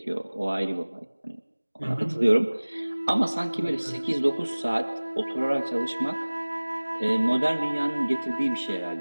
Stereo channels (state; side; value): inverted; both; correlation -1.00